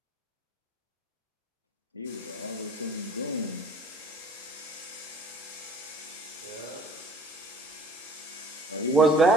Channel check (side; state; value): both; normal; correlation 0.50